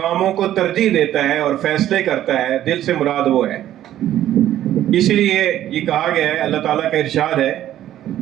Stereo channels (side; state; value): left; quieter; 12.4 dB